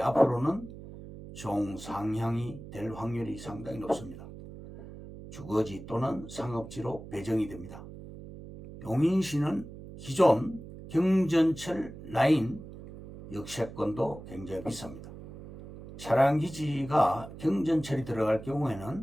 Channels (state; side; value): noise; right; hum, 14 dB below the sound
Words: 앞으로는 종상향이 될 확률이 상당히 높습니다. 주거지 또는 상업지로 배정이 됩니다. 용인시는 기존 경전철 라인 역세권도 굉장히 비쌉니다. 차량기지가 경전철이 들어갈